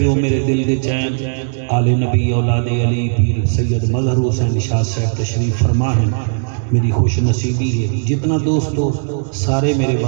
ہو میرے دل دے چین آل نبی اولاد علی پیر سید مظہر حسین شاہ صاحب تشریف فرما ہیں۔ میری خوش نصیبی ہے جتنا دوست ہو سارے میرے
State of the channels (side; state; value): left; silent; digital silence